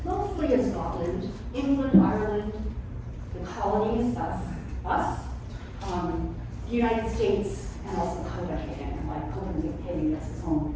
mostly in Scotland, England, Ireland, the colonies, that's us, the United States, and also Copenhagen. Like Copenhagen has its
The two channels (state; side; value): identical; both; correlation 1.00